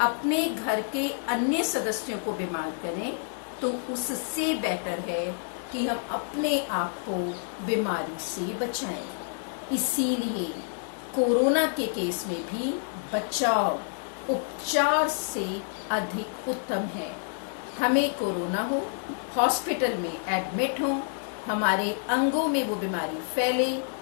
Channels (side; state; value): right; silent; digital silence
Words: अपने घर के अन्य सदस्यों को बीमार करें? तो उससे बेटर है कि हम अपने आप को बीमारी से बचाएं। इसीलिए कोरोना के केस में भी बचाव उपचार से अधिक उत्तम है। हमें कोरोना हो, हॉस्पिटल में एडमिट हो, हमारे अंगों में वो बीमारी फैले,